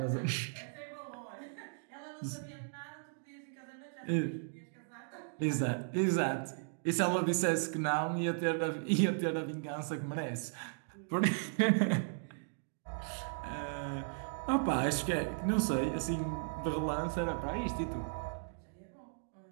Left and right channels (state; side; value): silent; left; digital silence